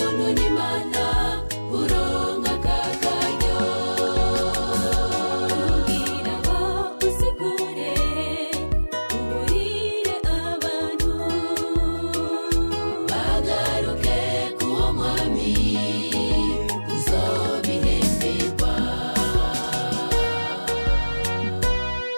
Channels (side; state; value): both; inverted; correlation -1.00